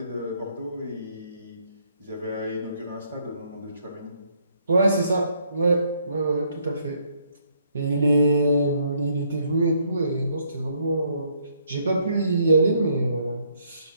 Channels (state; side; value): inverted; both; correlation -0.69